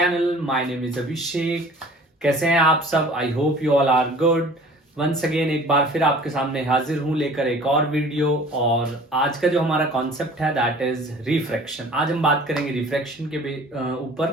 My name is Abhishek. कैसे हैं आप सब? I hope you all are good. Once again एक बार फिर आपके सामने हाजिर हूं लेकर एक और वीडियो। और आज का जो हमारा कॉन्सेप्ट है दैट इज रिफ्रैक्शन। आज हम बात करेंगे रिफ्रैक्शन के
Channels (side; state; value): both; normal; correlation 0.47